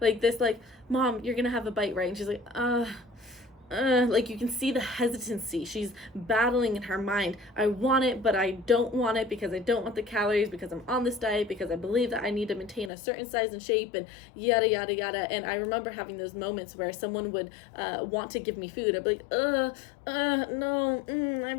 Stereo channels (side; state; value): right; drops out; at 12.9 s